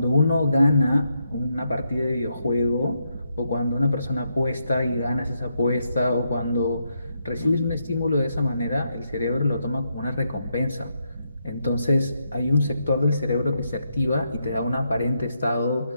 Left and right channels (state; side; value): inverted; both; correlation -0.80